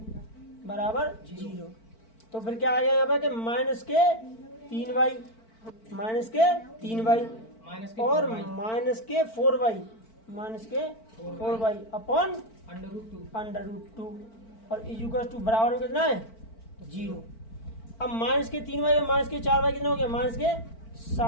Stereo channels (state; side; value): late; right; 4.5 ms